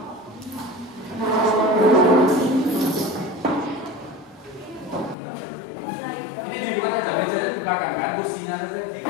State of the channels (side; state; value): right; drops out; at 5.2 s